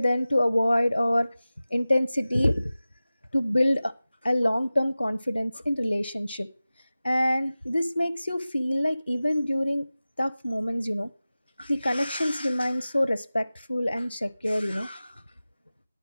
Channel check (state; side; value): inverted; both; correlation -0.97